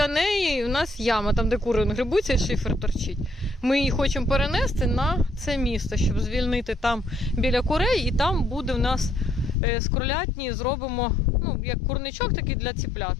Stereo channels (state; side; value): drops out; right; at 9.6 s